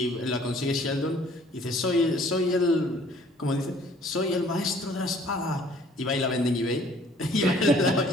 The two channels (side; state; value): both; normal; correlation 0.56